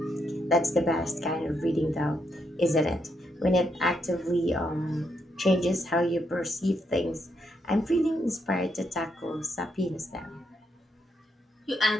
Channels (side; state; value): both; normal; correlation 0.79